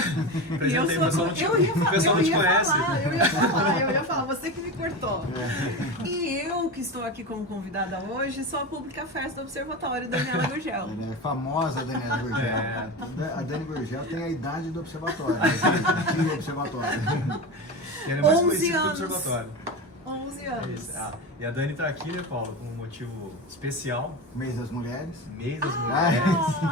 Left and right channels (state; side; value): normal; both; correlation 0.24